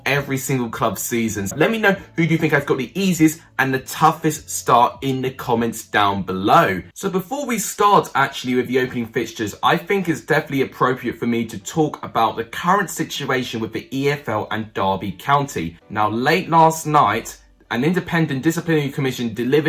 every single club season. Let me know who do you think has got the easiest and the toughest start in the comments down below. So before we start actually with the opening fixtures, I think it's definitely appropriate for me to talk about the current situation with the EFL and Derby County. Now, late last night, an independent disciplinary commission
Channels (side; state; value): both; identical; correlation 1.00